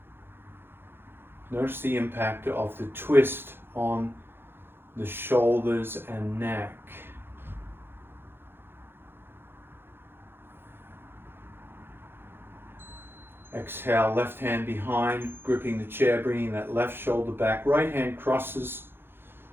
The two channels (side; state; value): left; late; 0.10 ms